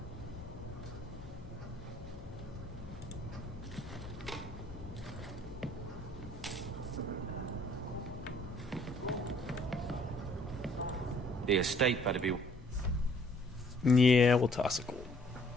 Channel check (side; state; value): both; normal; correlation 0.61